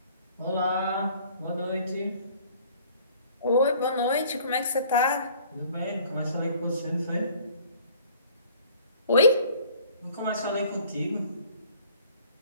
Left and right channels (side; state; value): both; inverted; correlation -0.53